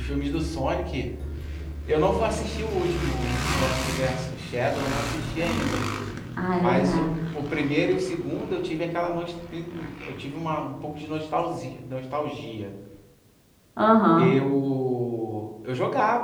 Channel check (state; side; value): identical; both; correlation 1.00